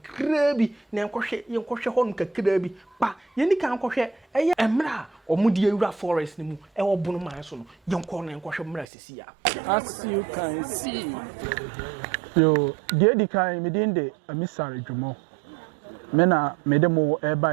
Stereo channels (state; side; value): drops out; left; at 8.8 s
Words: bi na yenkohwe ho kakra bi pa yeni kan kohwe emra omudi ewura forest ni mu wo Bono man so no yenko na yenkohwe mra sisi ya as you can see yo di kan me din de amisare dwumo me na me de mo